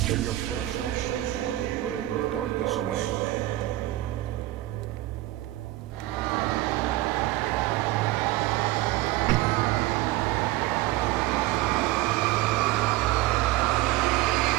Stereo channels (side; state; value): left; quieter; 17.0 dB